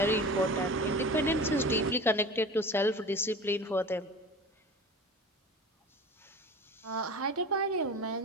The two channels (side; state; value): both; normal; correlation 0.35